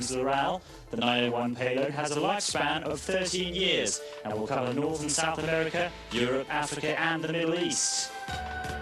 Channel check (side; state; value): both; identical; correlation 1.00